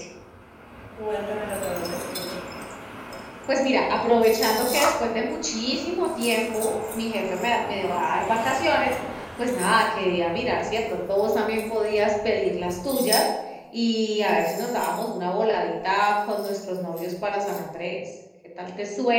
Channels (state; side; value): identical; both; correlation 1.00